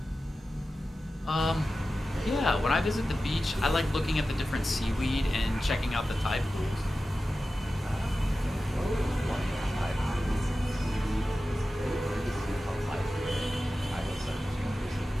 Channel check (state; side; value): normal; both; correlation 0.94